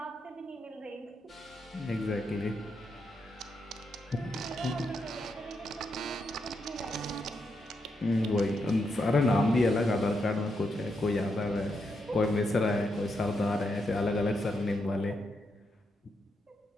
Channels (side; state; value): both; normal; correlation 0.82